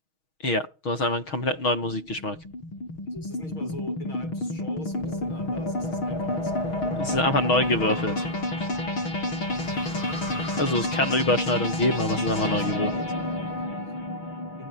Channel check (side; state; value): right; late; 6.3 ms